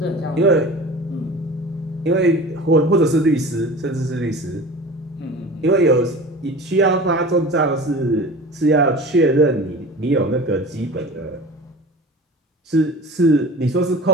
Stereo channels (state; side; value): normal; both; correlation 0.38